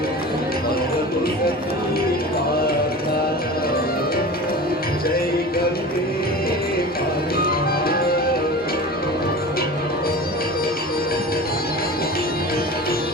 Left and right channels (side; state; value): both; normal; correlation 0.35